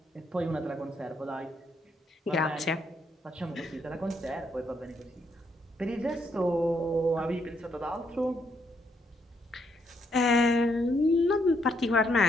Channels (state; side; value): normal; both; correlation 0.75